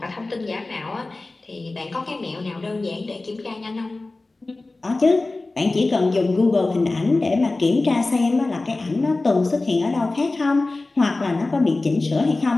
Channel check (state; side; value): quieter; right; 3.2 dB